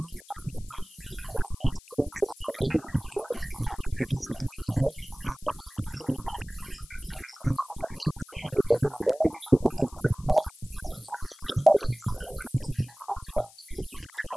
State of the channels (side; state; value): left; noise; hiss, 22 dB below the sound